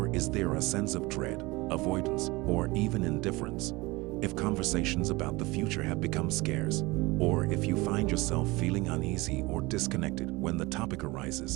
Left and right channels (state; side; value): quieter; left; 22.6 dB